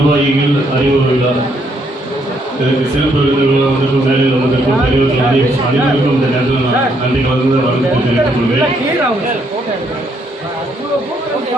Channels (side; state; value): both; normal; correlation 0.72